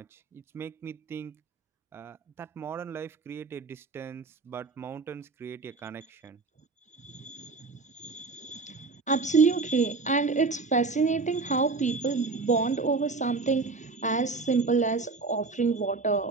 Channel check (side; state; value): left; quieter; 4.1 dB